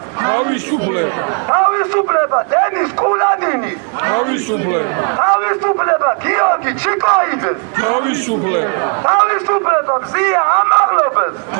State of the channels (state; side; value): quieter; left; 39.5 dB